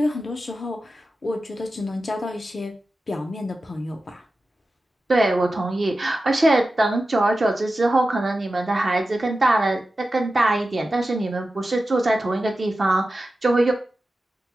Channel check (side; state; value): both; normal; correlation 0.93